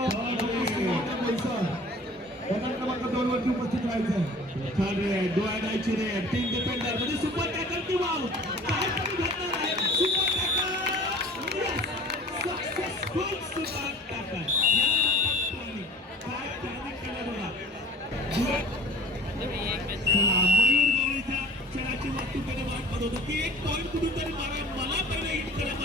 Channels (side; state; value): both; normal; correlation 0.45